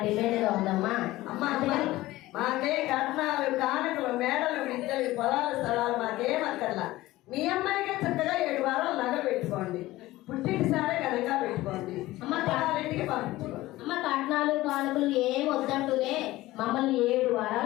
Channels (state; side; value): quieter; right; 17.5 dB